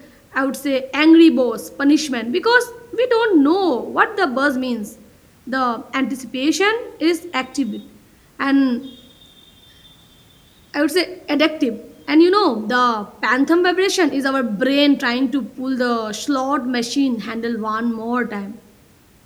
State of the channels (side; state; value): both; identical; correlation 1.00